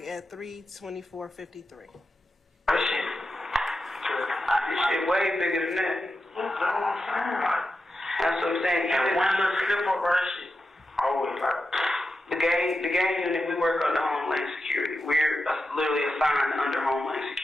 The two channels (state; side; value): normal; both; correlation 0.90